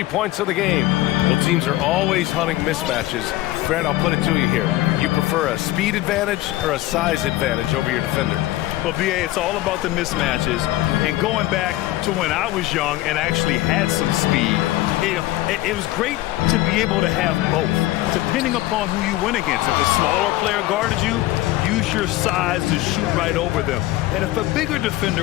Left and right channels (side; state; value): right; quieter; 16.6 dB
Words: points of the game. Well, teams are always hunting mismatches. Grant, I'll put it to you here. You prefer a speed advantage or a size advantage over your defender? Well, B.A., it's all about the mismatches. And going back to when I was young and actually had some speed, it was great to be able to have both, depending upon who you went against. If a smaller player guarded you, use your size to shoot right over them. And if a bigger defender